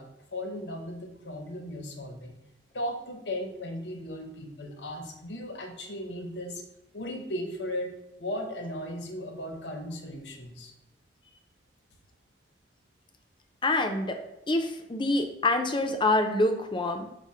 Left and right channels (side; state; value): both; normal; correlation 0.28